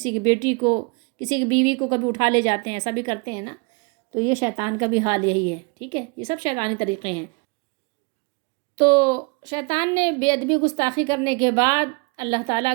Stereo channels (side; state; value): left; quieter; 31.2 dB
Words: کی بیٹی کو، کسی کی بیوی کو کبھی اٹھا لے جاتے ہیں، ایسا بھی کرتے ہیں نا۔ تو یہ شیطان کا بھی حال یہی ہے، ٹھیک ہے، یہ سب شیطانی طریقے ہیں۔ تو شیطان نے بے ادبی گستاخی کرنے کے بعد، اللہ تعالیٰ